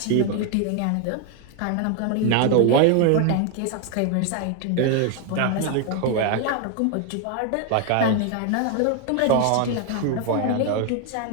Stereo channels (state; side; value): different; both; correlation 0.00